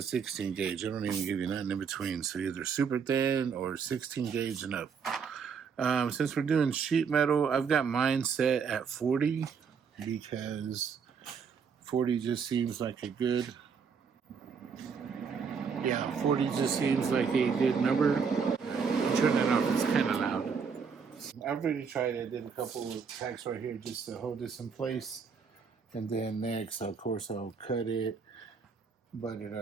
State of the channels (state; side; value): quieter; left; 6.1 dB